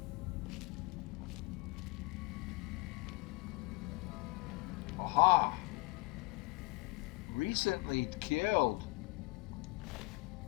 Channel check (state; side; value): quieter; right; 23.6 dB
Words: Aha! Recently killed.